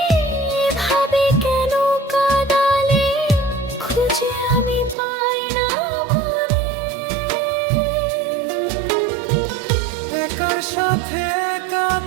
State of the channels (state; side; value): drops out; left; at 5.0 s